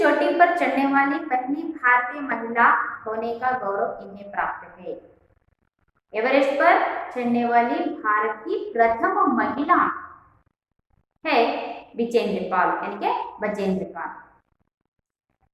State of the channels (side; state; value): both; identical; correlation 1.00